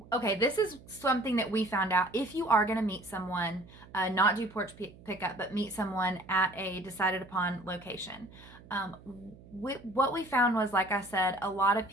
Okay, this is something that we found out. If you are going to meet someone, not do porch pickup, but meet someone at a decided upon location. What we found was, like I said, a lot of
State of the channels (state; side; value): noise; right; hum, 21 dB below the sound